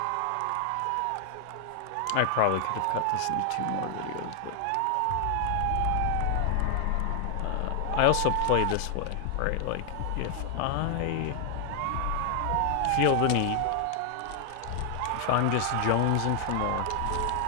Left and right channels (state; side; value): different; both; correlation 0.00